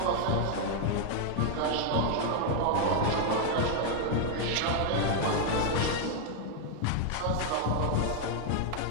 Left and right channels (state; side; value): different; both; correlation 0.00